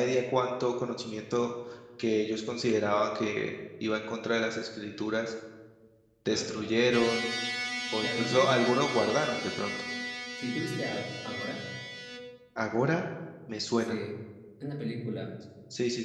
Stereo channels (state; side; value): identical; both; correlation 1.00